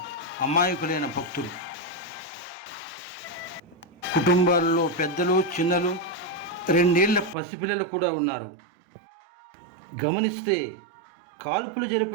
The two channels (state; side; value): drops out; left; at 7.4 s